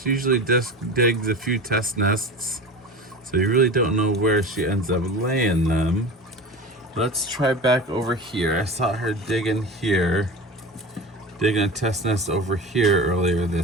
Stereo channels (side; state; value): both; normal; correlation 0.32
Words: She usually just digs a few test nests, so you really don't know where she ends up laying them. Let's try back over here. I saw her digging here, digging a test nest over here earlier